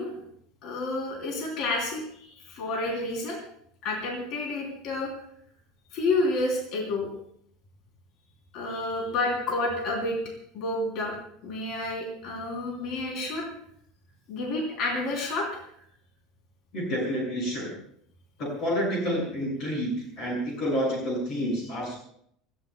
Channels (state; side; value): normal; both; correlation 0.32